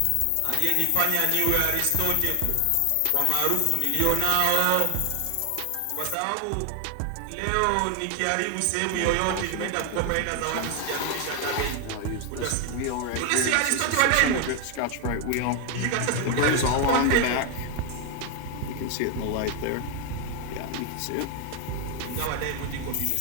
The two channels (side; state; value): both; different; correlation 0.01